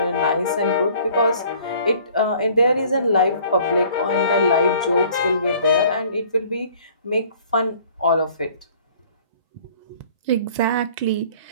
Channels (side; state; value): both; inverted; correlation -0.53